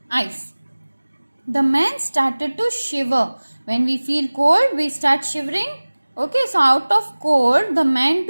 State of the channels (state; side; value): inverted; both; correlation -1.00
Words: ice. The man started to shiver. When we feel cold, we start shivering. Okay, so out of cold, the man